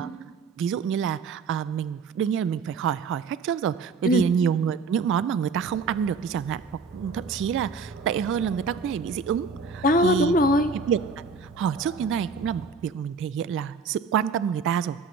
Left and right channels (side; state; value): left; quieter; 4.5 dB